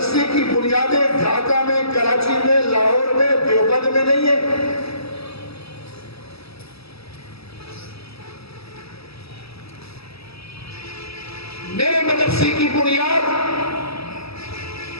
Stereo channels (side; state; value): right; late; 0.77 ms